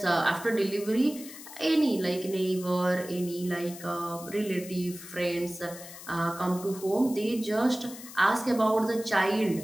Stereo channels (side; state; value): left; noise; hiss, 14 dB below the sound